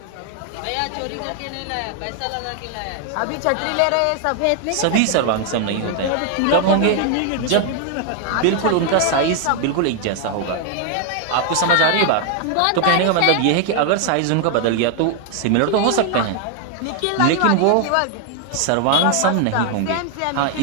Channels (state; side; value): different; both; correlation 0.00